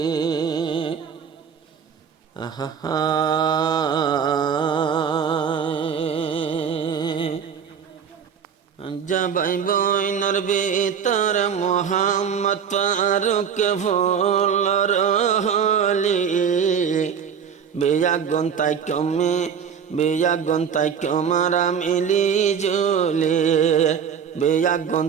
জবাই বইনর ভিতর মোহাম্মদ ফারুক ফুলর হলি, বেয়াগুন তাই কমে বেয়াগুন তাই কমারা মিলি জুলে, বেয়াগুন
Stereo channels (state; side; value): quieter; left; 7.3 dB